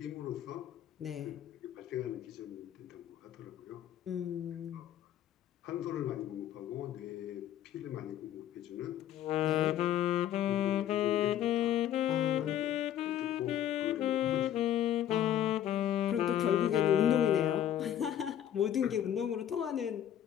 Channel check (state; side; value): quieter; right; 10.9 dB